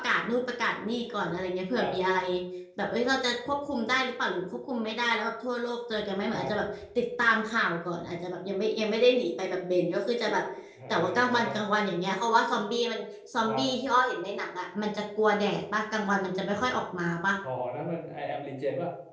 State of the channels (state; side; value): identical; both; correlation 1.00